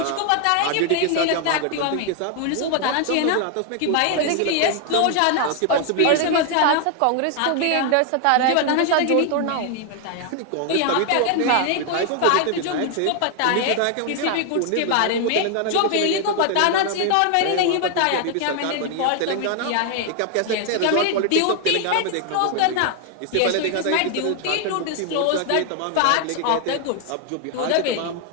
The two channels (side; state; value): both; different; correlation 0.00